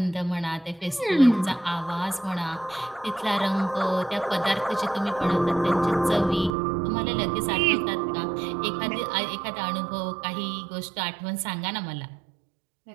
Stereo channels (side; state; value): left; drops out; at 6.5 s